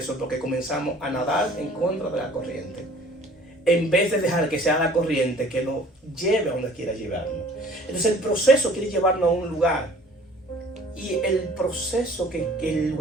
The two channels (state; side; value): normal; both; correlation 0.51